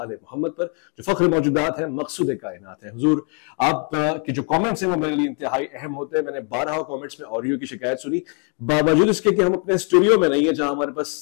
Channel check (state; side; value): quieter; right; 39.2 dB